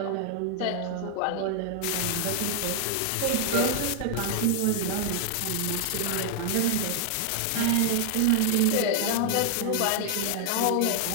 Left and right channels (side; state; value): both; different; correlation 0.00